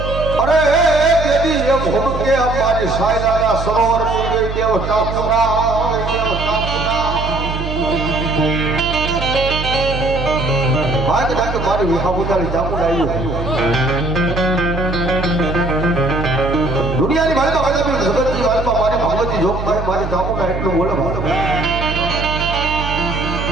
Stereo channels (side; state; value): right; noise; hum, 5 dB below the sound